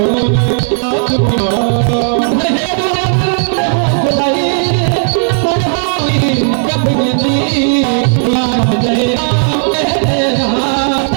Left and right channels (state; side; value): silent; left; digital silence